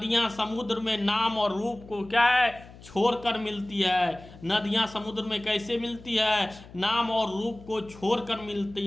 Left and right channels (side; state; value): left; noise; hum, 19 dB below the sound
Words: समुद्र में नाम और रूप को क्या है? छोड़कर मिलती है। नदियां समुद्र में कैसे मिलती है? नाम और रूप को छोड़कर मिलती